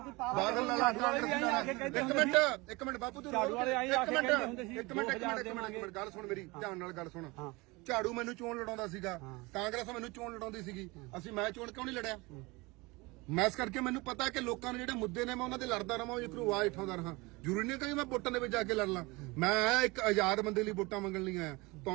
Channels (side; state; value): left; quieter; 24.2 dB